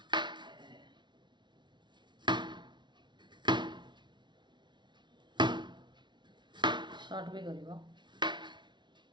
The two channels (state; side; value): late; left; 0.22 ms